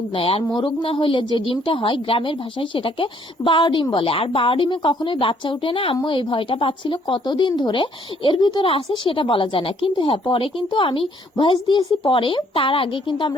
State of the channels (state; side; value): normal; both; correlation 0.65